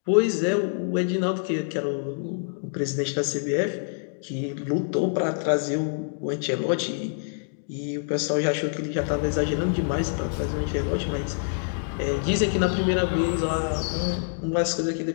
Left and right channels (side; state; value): right; silent; digital silence